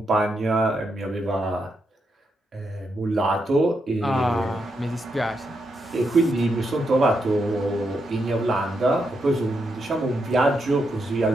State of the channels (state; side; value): normal; both; correlation 0.82